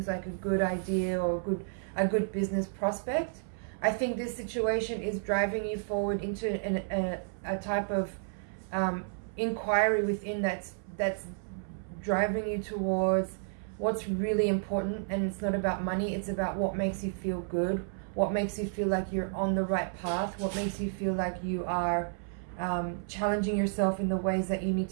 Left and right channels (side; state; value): left; silent; 57 dB below the other